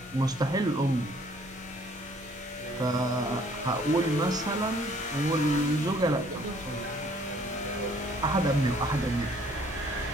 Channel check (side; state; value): both; normal; correlation 0.60